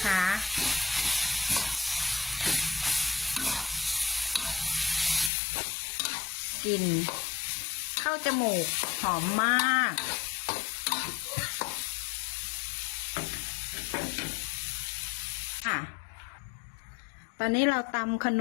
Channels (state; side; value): drops out; right; at 5.3 s